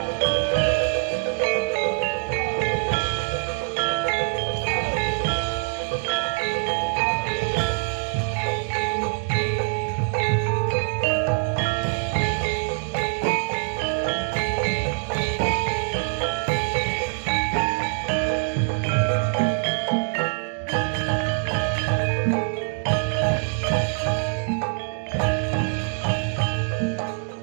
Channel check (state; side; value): silent; left; 60 dB below the other